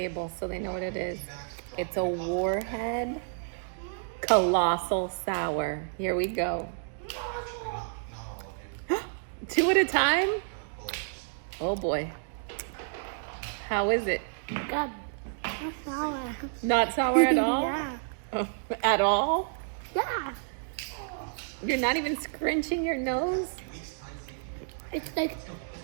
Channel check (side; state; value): left; silent; digital silence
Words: so they know what it is. It's a Warhead Colossal Sour. Here we go. 2 at a time? Oh boy. How is it? Good. Not sour. Not sour at all? Yeah. At all? Yeah. You're not even scrunching your nose? It's like,